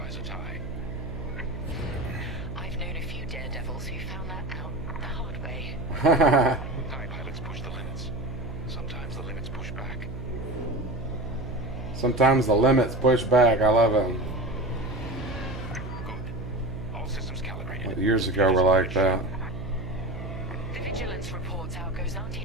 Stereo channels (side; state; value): right; noise; hum, 8 dB below the sound